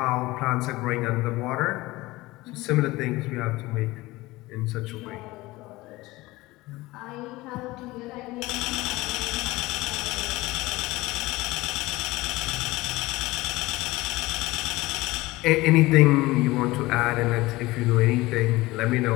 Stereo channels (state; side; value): quieter; right; 19.9 dB